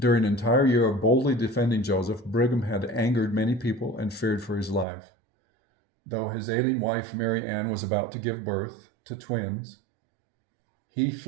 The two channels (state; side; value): drops out; left; at 4.9 s